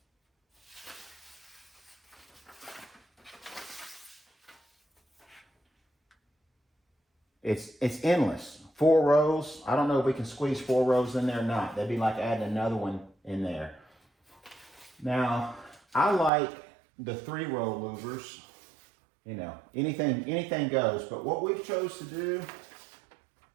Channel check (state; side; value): drops out; left; at 16.3 s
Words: It's endless. 4 rows. I don't know if we can squeeze 4 rows in there or not. That'd be like adding another one in there. Now, I like the 3-row louvers. You know, anything goes. But what we've chose to do